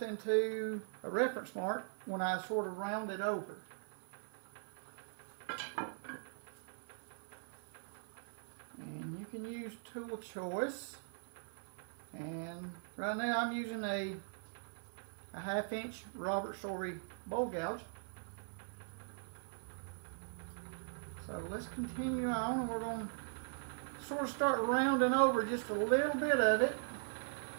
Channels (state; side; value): silent; left; digital silence